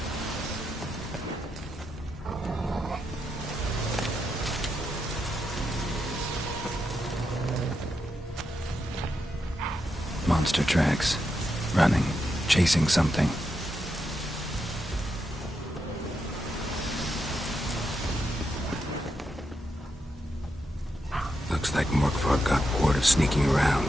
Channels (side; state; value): both; normal; correlation 0.84